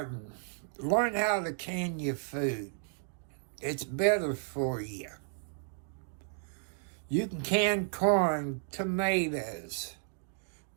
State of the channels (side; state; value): left; silent; digital silence